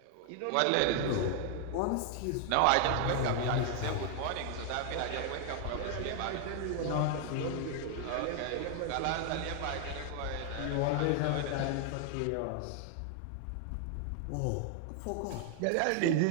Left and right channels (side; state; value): both; different; correlation 0.00